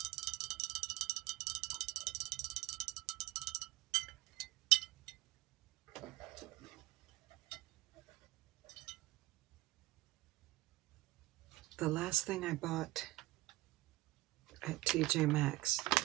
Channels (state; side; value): quieter; left; 18.1 dB